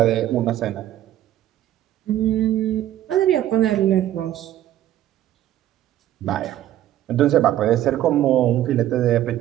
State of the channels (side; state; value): left; quieter; 12.9 dB